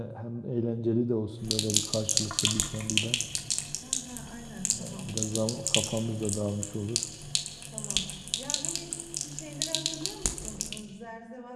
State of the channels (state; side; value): identical; both; correlation 1.00